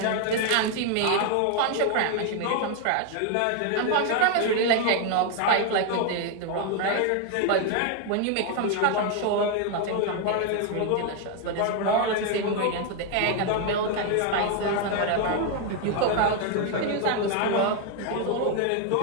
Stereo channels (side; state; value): both; different; correlation 0.01